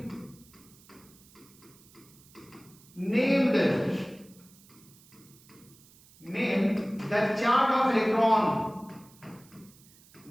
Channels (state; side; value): noise; right; hiss, 26 dB below the sound